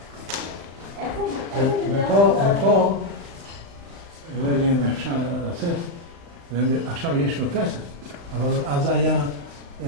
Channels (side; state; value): left; late; 35 ms